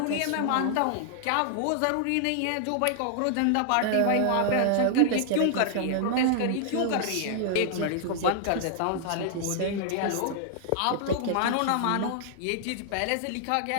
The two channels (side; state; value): both; different; correlation -0.01